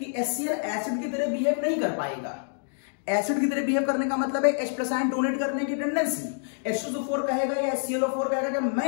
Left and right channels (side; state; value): right; silent; digital silence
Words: HCl एसिड की तरह बिहेव नहीं कर पाएगा। एसिड की तरह बिहेव करने का मतलब है H+ आयन डोनेट करने की टेंडेंसी। H2SO4 कहेगा या HClO4 कहेगा कि